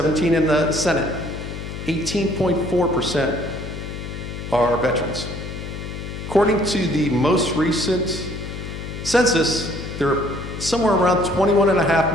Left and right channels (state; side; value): noise; left; hum, 8 dB below the sound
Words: in the Senate. 18.4% are veterans. According to the most recent census, there are somewhere around